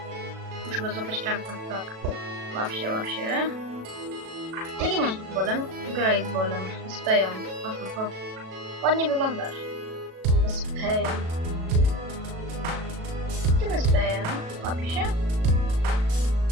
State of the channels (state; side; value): late; left; 37 ms